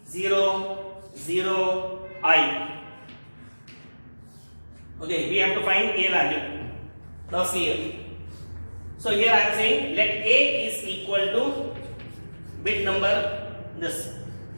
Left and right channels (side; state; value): both; inverted; correlation -1.00